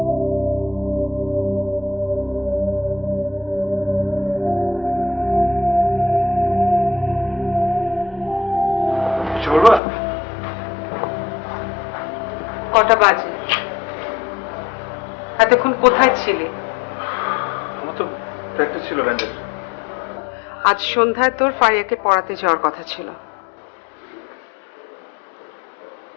কিছু বলবা? কটা বাজে? এতক্ষণ কোথায় ছিলে? আমার তো প্র্যাকটিস ছিল ব্যান্ডের। আজ সন্ধ্যায় তোর ফারিয়াকে পড়াতে যাওয়ার কথা ছিল।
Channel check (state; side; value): drops out; right; at 9.8 s